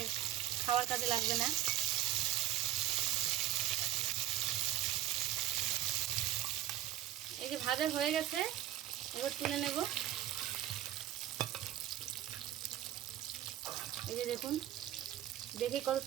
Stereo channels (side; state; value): left; quieter; 13.5 dB